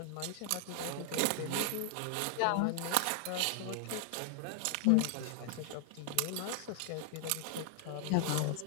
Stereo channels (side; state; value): both; different; correlation 0.00